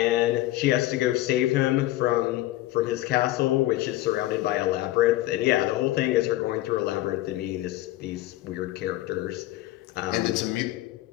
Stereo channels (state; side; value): quieter; right; 16.2 dB